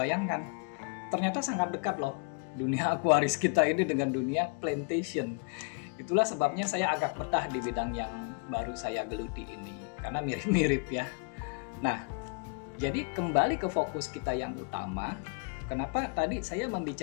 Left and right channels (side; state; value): right; quieter; 36.3 dB